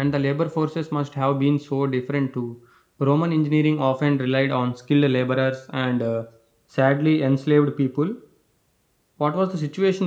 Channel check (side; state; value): both; identical; correlation 1.00